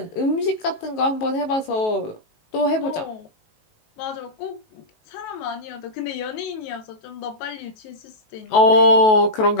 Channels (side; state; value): right; late; 19 ms